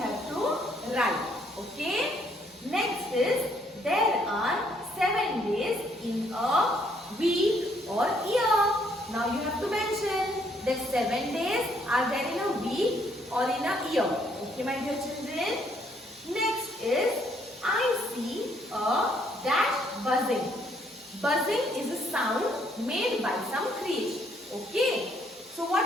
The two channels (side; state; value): both; normal; correlation 0.69